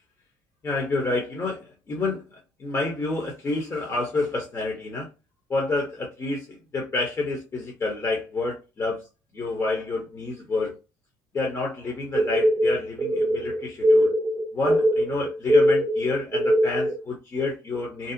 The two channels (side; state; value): both; normal; correlation 0.80